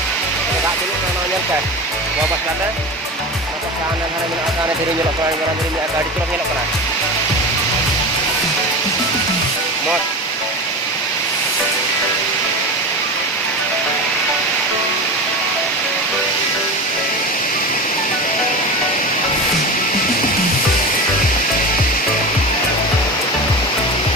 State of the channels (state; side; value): normal; both; correlation 0.27